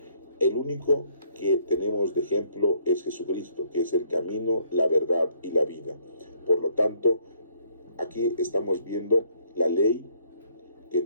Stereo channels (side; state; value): both; inverted; correlation -0.65